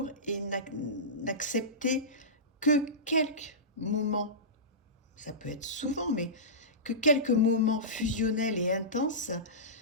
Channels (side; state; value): both; normal; correlation -0.19